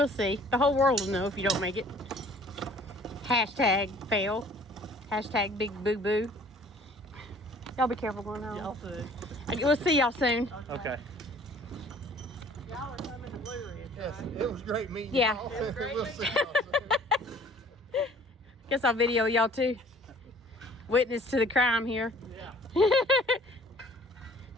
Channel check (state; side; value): normal; both; correlation 0.53